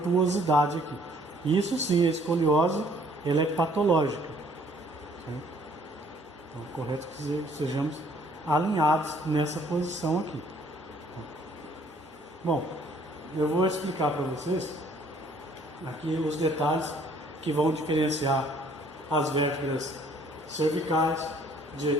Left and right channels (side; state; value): both; normal; correlation 0.60